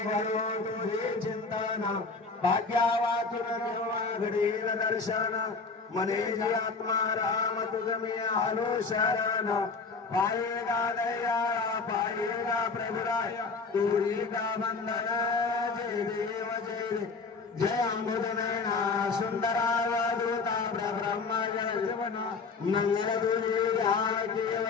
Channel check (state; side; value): quieter; right; 4.5 dB